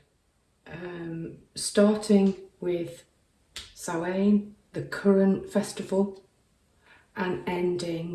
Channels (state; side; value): identical; both; correlation 1.00